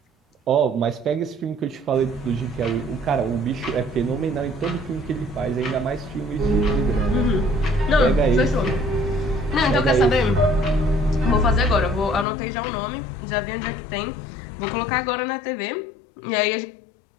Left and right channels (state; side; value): drops out; right; at 12.2 s